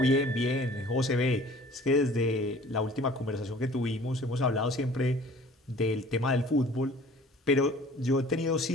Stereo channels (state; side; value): normal; both; correlation 0.49